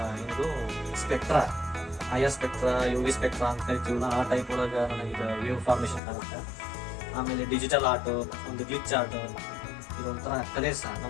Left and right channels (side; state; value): right; drops out; at 6.0 s